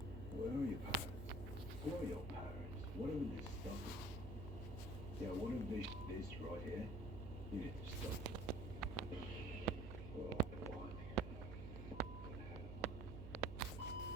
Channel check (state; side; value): noise; right; hum, 7 dB below the sound